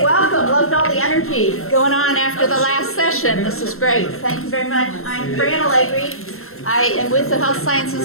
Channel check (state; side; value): late; right; 0.62 ms